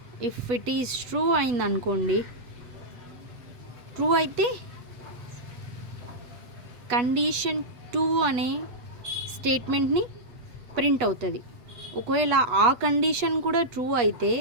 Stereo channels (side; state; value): left; late; 8.2 ms